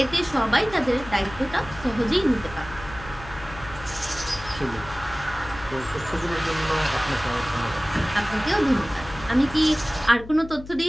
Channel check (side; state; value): left; noise; hum, 15 dB below the sound